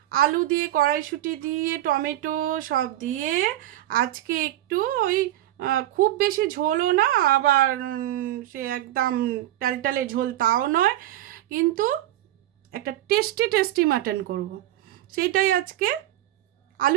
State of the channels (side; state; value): left; quieter; 14.2 dB